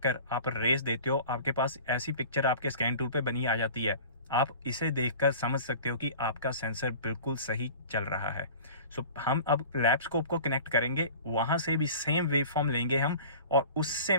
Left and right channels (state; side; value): inverted; both; correlation -0.41